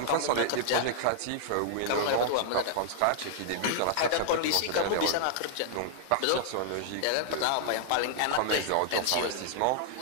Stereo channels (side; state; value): both; different; correlation -0.01